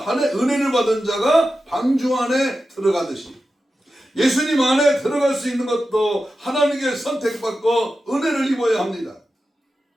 은혜를 받은 자가 방주 안에 들어가듯이 예수님 안에 들어갈 수 있는 것도 하나님께 선택받고 은혜를 입어야 합니다.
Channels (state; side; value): normal; both; correlation 0.92